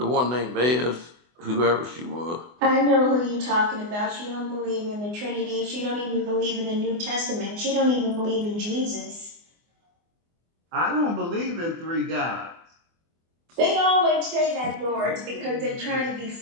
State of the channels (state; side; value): late; left; 24 ms